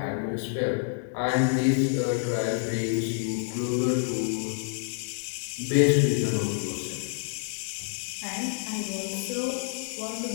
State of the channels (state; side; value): silent; right; digital silence